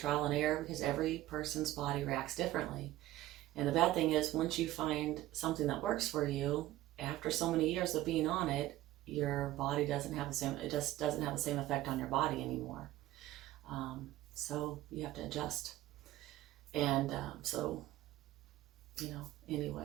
and error because every person's body reacts differently. And the bad thing is, once you find something that works for you, after so many years of being on it, your body doesn't have the same effect on your body anymore. So you have to adjust. And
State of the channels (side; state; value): left; quieter; 15.5 dB